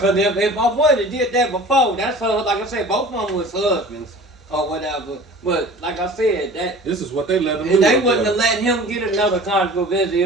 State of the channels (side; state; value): both; normal; correlation 0.43